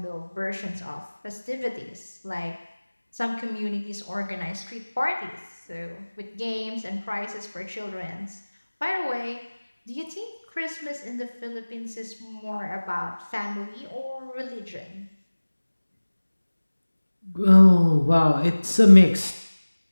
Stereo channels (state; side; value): inverted; both; correlation -1.00